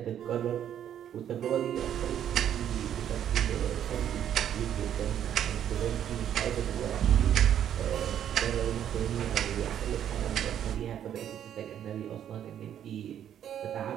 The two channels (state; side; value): quieter; left; 10.0 dB